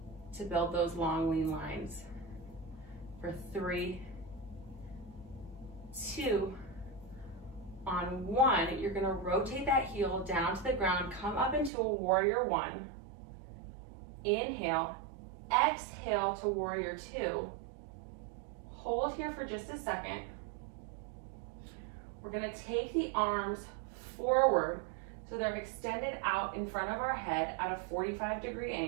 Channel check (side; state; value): left; drops out; at 11.7 s